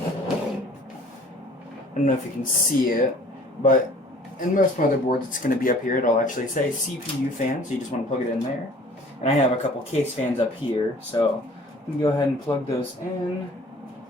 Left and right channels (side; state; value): both; normal; correlation 0.51